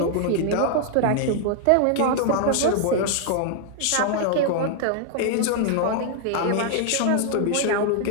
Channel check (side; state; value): both; different; correlation 0.00